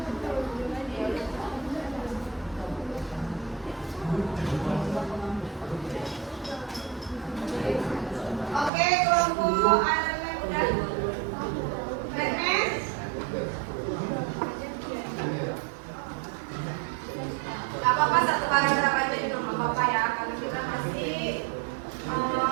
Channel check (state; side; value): drops out; left; at 8.7 s